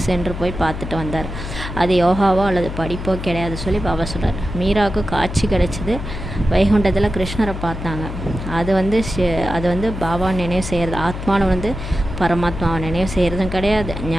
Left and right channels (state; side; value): noise; left; hum, 7 dB below the sound